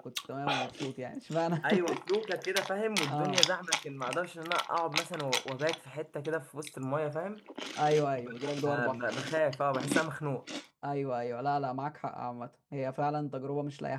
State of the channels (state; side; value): identical; both; correlation 1.00